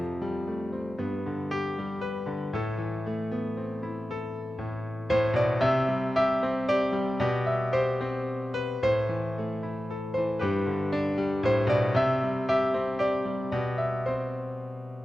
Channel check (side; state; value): both; normal; correlation 0.94